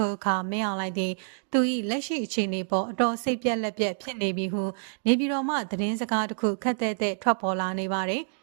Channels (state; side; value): silent; left; digital silence